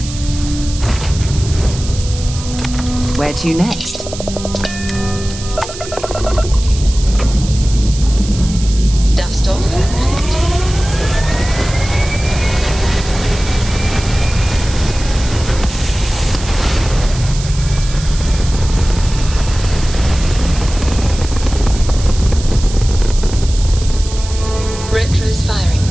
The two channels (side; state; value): right; noise; hiss, 12 dB below the sound